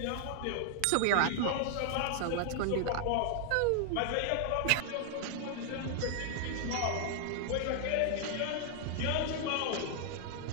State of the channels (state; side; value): different; both; correlation 0.00